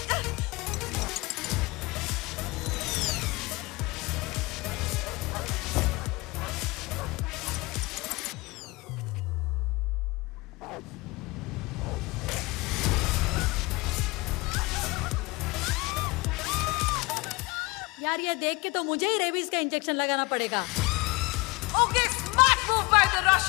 यार ये देख के तो मुझे ही रेबीज का इंजेक्शन लगाना पड़ेगा। Okay, smart move by the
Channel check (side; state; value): right; quieter; 24.2 dB